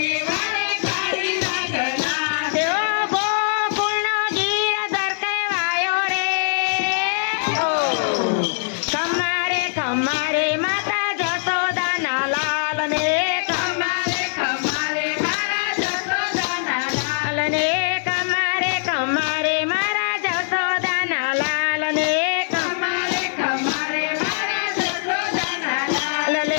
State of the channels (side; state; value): right; silent; digital silence